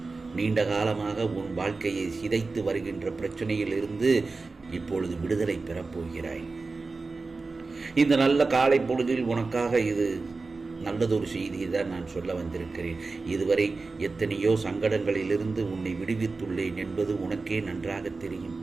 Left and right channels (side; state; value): left; quieter; 3.9 dB